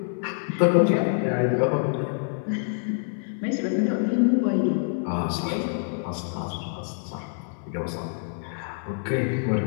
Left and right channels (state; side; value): silent; right; 58 dB below the other